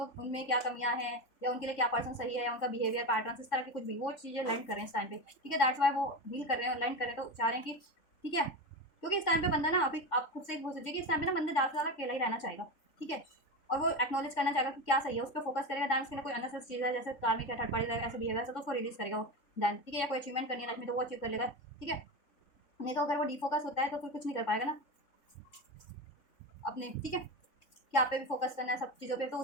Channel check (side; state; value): right; late; 3.6 ms